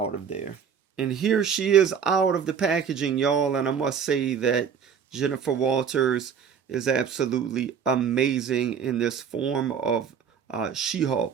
of there. And here she is out of the packaging, y'all, and I must say that Jennifer Walters is absolutely amazing in this form of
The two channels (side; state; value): left; quieter; 7.1 dB